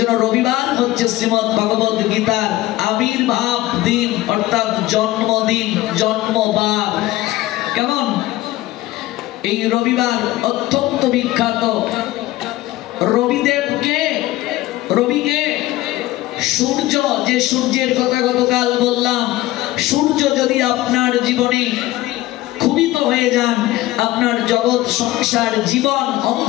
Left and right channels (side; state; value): right; quieter; 16.8 dB